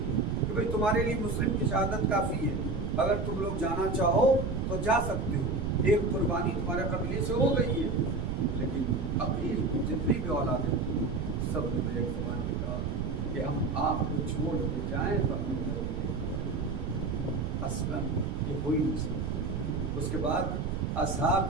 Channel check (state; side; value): noise; right; rumble, 2 dB below the sound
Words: کہ بھائی تمہارے لیے مسلم کی شہادت کافی ہے، اگر تم لوگ جانا چاہو تو جا سکتے ہو، ایک قربانی تمہارے قبیلے سے ہو گئی ہے۔ لیکن عقیل کی جتنی بھی اولادیں تھیں سب نے ایک زبان میں کہا کہ ہم آپ کو چھوڑ کے جائیں تو ہمیں ضروری ہے، اصلاً یہ ہو ہی نہیں سکتا۔ اس کے بعد